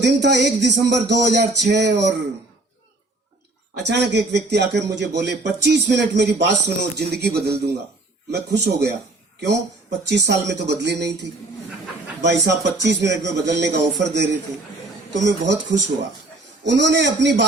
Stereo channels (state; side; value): quieter; left; 3.0 dB